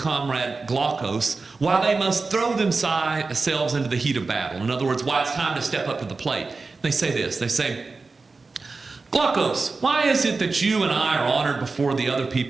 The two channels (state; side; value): quieter; left; 4.0 dB